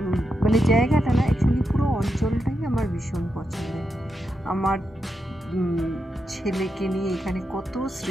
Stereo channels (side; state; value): both; normal; correlation 0.86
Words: মানে জায়গাটা না, অ্যাকচুয়ালি পুরো অঞ্চলটাই আমার ভীষণ পছন্দের। আমার ছেলেকে নিয়ে এখানে কত